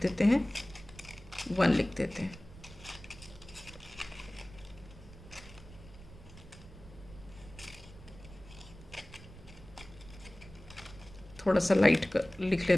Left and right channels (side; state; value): right; noise; rumble, 18 dB below the sound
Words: देते हैं, 1 लिख देते हैं। थोड़ा सा लाइट कर लिख